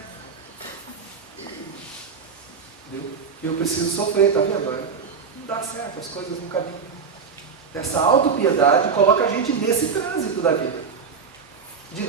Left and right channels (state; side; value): quieter; left; 5.8 dB